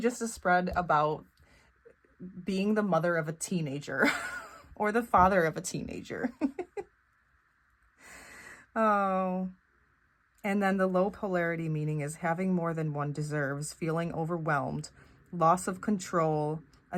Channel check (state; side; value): identical; both; correlation 1.00